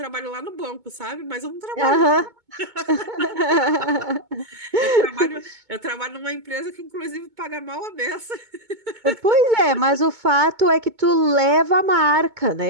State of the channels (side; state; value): left; late; 2.2 ms